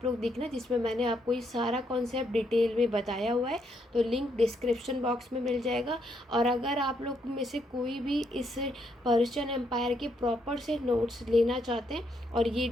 लोग देखना, जिसमें मैंने आपको ये सारा कॉन्सेप्ट डिटेल में बताया हुआ है, तो लिंक डिस्क्रिप्शन बॉक्स में मिल जाएगा। और अगर आप लोग में से कोई भी इस पर्शियन एम्पायर के प्रॉपर से नोट्स लेना चाहते हैं, और ये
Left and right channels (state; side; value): normal; both; correlation 0.75